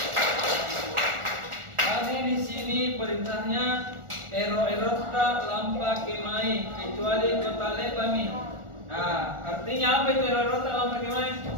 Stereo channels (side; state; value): left; late; 1.4 ms